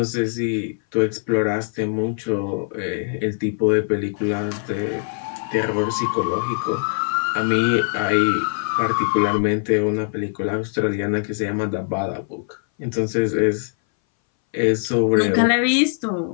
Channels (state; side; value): silent; right; 61 dB below the other